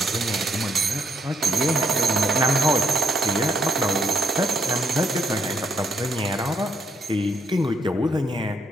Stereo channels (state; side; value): normal; both; correlation 0.74